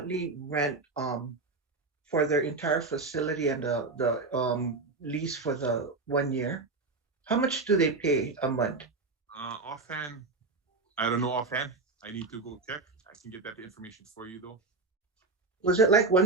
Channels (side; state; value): left; quieter; 3.7 dB